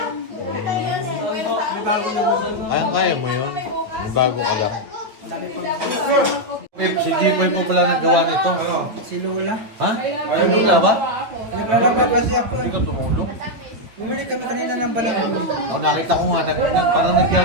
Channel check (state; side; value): late; left; 9.1 ms